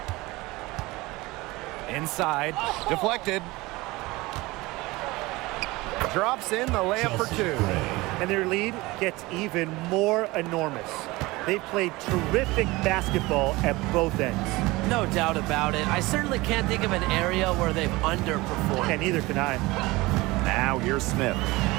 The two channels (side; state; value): left; quieter; 21.3 dB